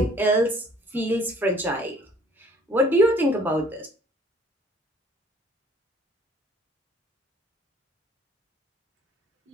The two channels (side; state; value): both; normal; correlation 0.56